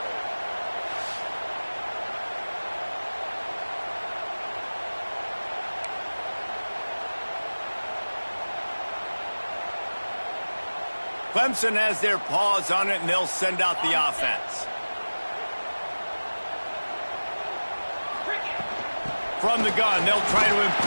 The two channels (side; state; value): both; inverted; correlation -1.00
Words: Clemson has their paws on it, and they'll send out the offense. From the gun, they'll try to